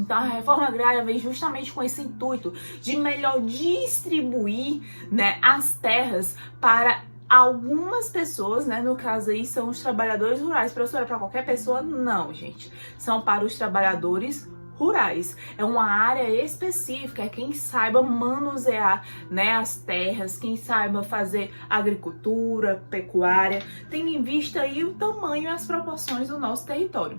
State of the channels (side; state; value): both; inverted; correlation -1.00